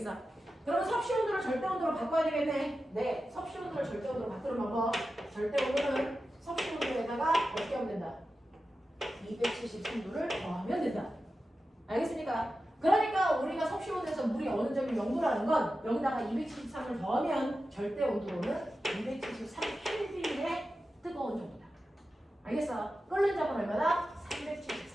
그러면 섭씨 온도를 절대 온도로 바꿔야 되겠네. 네, 섭씨 온도를 절대 온도로 바꾸는 방법. 절대 온도는 섭씨 온도에다가 어떻게 하면 된다? 273도를 더하면 된다. 알겠습니까? 그러니까 우리가 섭씨 온도에서 물이 어느 점이 0도라는 건 여기다가 273을 더하면 절대 온도로는 273켈빈의 뜨거운 정도다. 알겠어? 끓는 점은 얼마나?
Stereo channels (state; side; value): normal; both; correlation 0.92